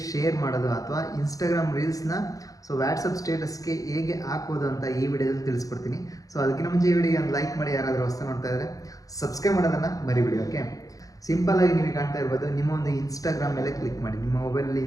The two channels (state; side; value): late; right; 0.17 ms